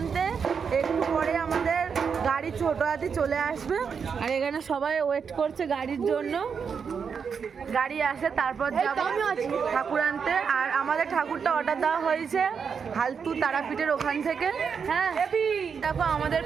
একটু পরে আমাদের গাড়ি ছোট হাতি চলে আসবে, আর এখানে সবাই ওয়েট করছে গাড়ির জন্য। গাড়ি আসে তারপর যাবো ঠাকুর আনতে। আর আমাদের ঠাকুরটা অর্ডার দেওয়া হয়েছে হালতু তারাপীঠের ওখান থেকে। হ্যাঁ দেখো আমাদের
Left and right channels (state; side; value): quieter; left; 6.3 dB